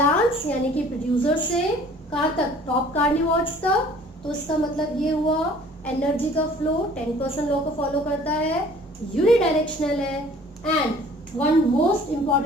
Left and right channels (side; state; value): both; normal; correlation 0.51